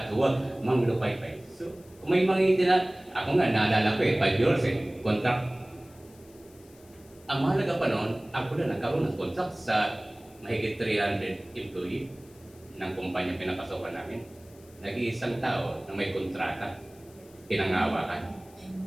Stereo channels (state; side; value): noise; left; hiss, 26 dB below the sound